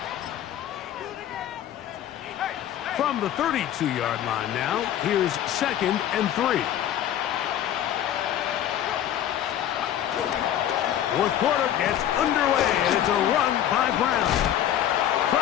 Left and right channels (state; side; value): quieter; right; 11.1 dB